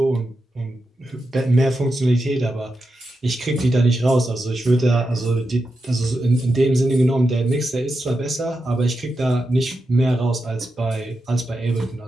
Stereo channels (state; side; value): normal; both; correlation 0.88